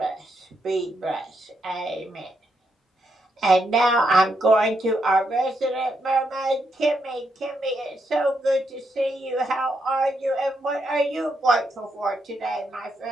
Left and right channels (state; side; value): normal; both; correlation 0.80